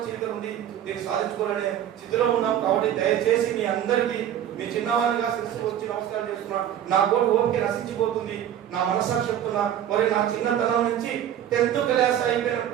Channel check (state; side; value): quieter; left; 10.6 dB